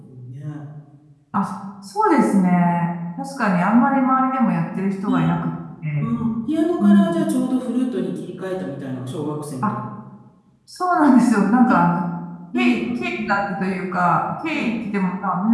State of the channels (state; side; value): identical; both; correlation 1.00